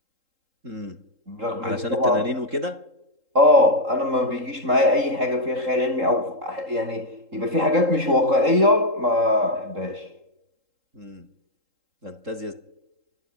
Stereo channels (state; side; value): late; left; 3.8 ms